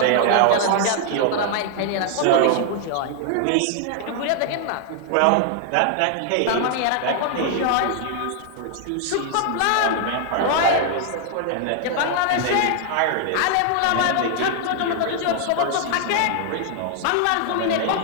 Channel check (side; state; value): both; different; correlation 0.00